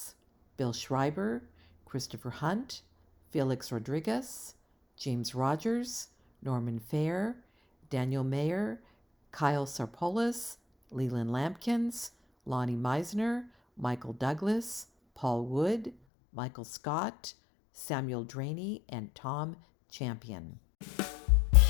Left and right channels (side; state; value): right; drops out; at 15.9 s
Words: Bill Schreiber, Christopher Hunt, Felix Rodriguez, James Rogers, Norman Fair, Daniel Mayer, Kyle Sarpolis, Leland Lampkins, Lonnie Meisner, Michael Douglas, Paul Wood, Michael Scott, Samuel Draney, and Tom Champion.